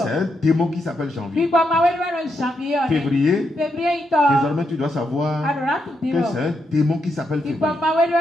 un démon qui s'appelle janvier. Février, désormais, tu dois savoir que c'est un démon qui s'appelle février.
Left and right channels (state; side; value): normal; both; correlation 0.81